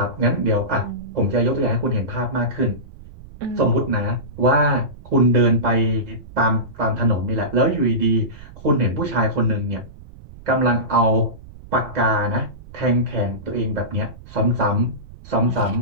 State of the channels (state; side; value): noise; right; rumble, 18 dB below the sound